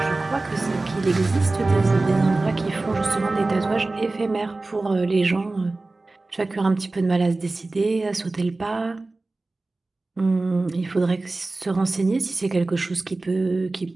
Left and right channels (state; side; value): quieter; left; 3.2 dB